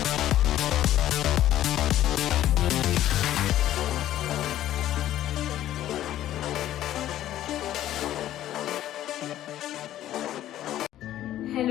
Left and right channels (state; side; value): quieter; right; 12.9 dB